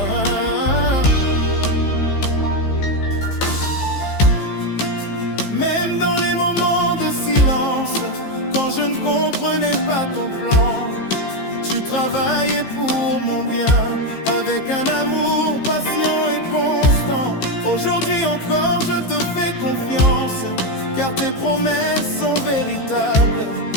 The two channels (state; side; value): late; right; 15 ms